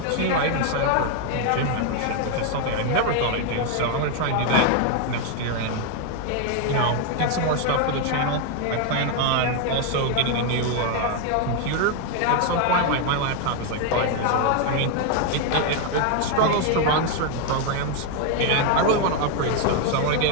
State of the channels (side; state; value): both; different; correlation 0.01